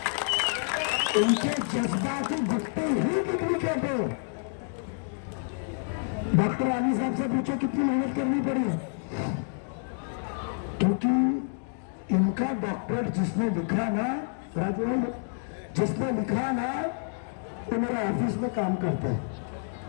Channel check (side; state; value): right; silent; 59 dB below the other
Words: इनके जज्बाती गुट्टी ही डुप्लीकेट है। डॉक्टर आली साहब से पूछो कितनी मेहनत करनी पड़ी है, क्योंकि इनका डॉक्टर जिसने लिखा ना, राजवाल जिसने लिखा ना, वो मेरा ऑफिस में काम करता है।